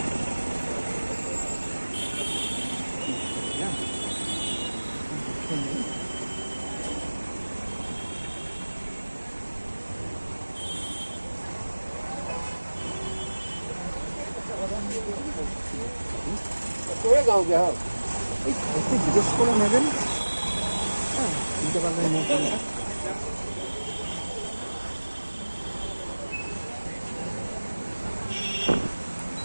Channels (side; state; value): both; inverted; correlation -1.00